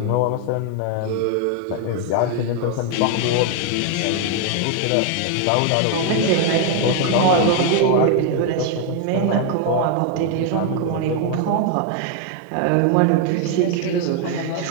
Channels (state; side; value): different; both; correlation 0.00